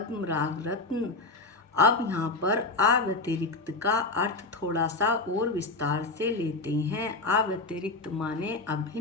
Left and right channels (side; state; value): right; quieter; 3.5 dB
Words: रत्न। अब यहाँ पर अव्यतिरिक्त का अर्थ थोड़ा सा और विस्तार से लेते हैं। अव्यतिरिक्त माने